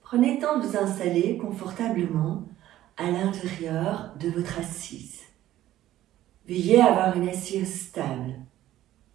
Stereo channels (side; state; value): left; quieter; 13.7 dB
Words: Prenez le temps de vous installer confortablement à l'intérieur de votre assise. Veuillez avoir une assise stable,